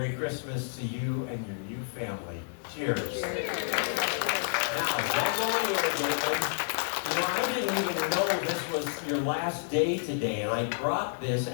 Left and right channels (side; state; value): right; silent; digital silence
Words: Christmas to you and your new family. Cheers. Now, don't go anywhere, David. I didn't even know this was your last day today, and I brought this